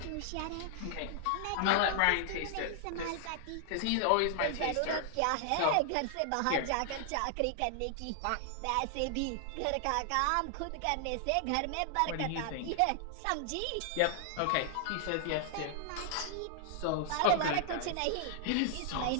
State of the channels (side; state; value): both; different; correlation 0.00